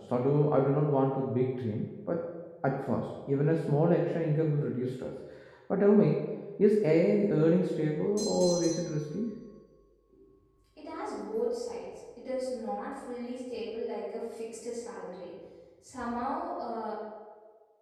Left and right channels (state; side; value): identical; both; correlation 1.00